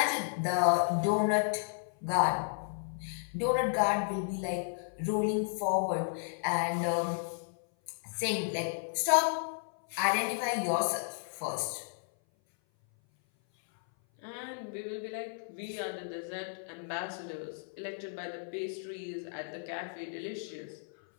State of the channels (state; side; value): silent; right; 56 dB below the other